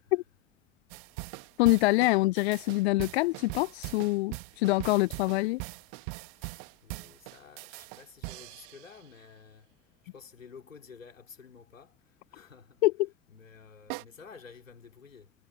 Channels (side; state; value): right; quieter; 13.2 dB